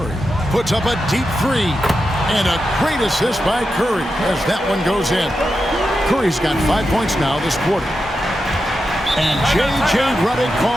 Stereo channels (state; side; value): normal; both; correlation 0.88